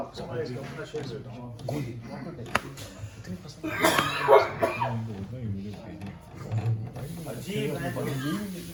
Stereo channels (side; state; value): both; identical; correlation 1.00